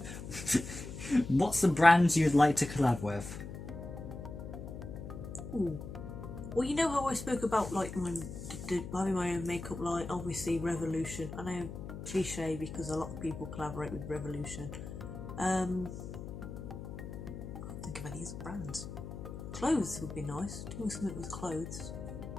What's the brand you'd like to collab with? Ooh. Well, you know how I spoke about like having my own makeup line, obviously Revolution. I know cliche because a lot of people collaborate with Revolution. I can't think of any other brands. Clothes would be nice. Doing something with clothes.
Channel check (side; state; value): left; noise; hum, 9 dB below the sound